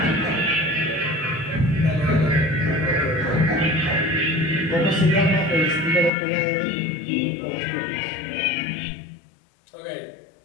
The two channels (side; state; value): right; drops out; at 6.1 s